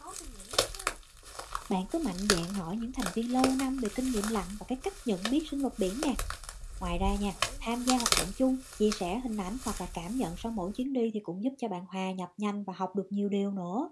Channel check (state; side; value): identical; both; correlation 1.00